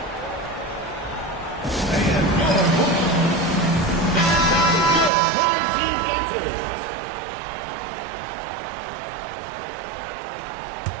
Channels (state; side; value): drops out; left; at 5.1 s